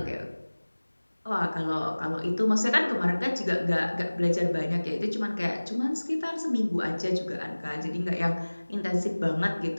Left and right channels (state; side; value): inverted; both; correlation -1.00